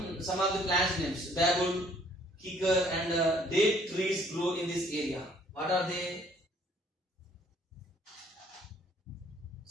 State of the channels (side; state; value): both; normal; correlation 0.61